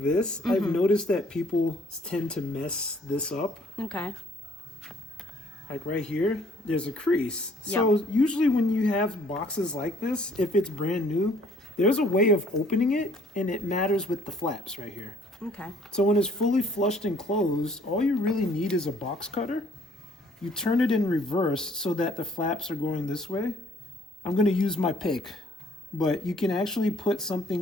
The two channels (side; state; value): both; normal; correlation 0.60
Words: this, I've noticed that people tend to mess this up. Okay. Like right here, there's a crease. So usually when you have boxes like this, if it's brand new, there's a way of opening it, and it matters with the flaps right here. Okay. So when it's fully flushed and closed, all you really need is a box cutter. You turn it in reverse so that the flaps are going this way. I'm going to use my pick, but you can actually put